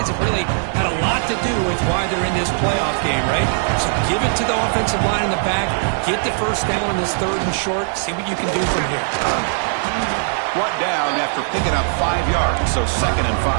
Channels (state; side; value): silent; left; 66 dB below the other